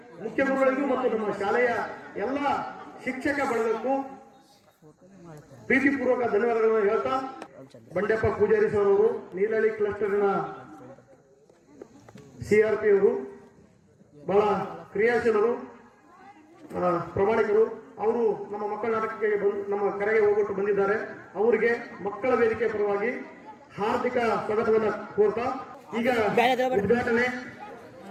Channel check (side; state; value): both; identical; correlation 1.00